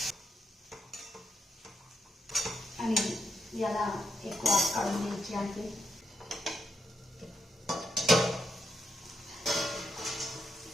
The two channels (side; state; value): both; normal; correlation 0.81